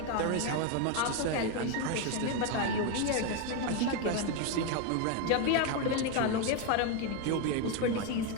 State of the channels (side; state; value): both; different; correlation 0.02